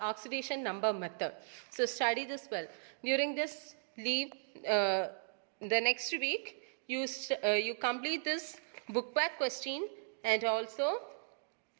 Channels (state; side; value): silent; left; digital silence